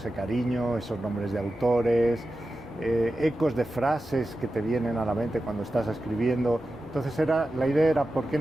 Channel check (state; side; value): normal; both; correlation 0.92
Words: cariño, esos nombres de autores, ecos de frases que te vienen a la mente cuando estás escribiendo. Entonces la idea era, ¿por qué